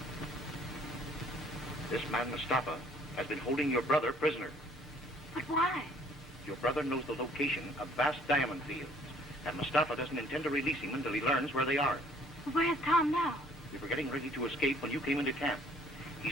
This man, Mustafa, has been holding your brother prisoner. But why? Your brother knows the location of vast diamond fields, and Mustafa doesn't intend to release him until he learns where they are. Where's Tom now? We were getting ready to escape when you came into camp.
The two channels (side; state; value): both; normal; correlation 0.59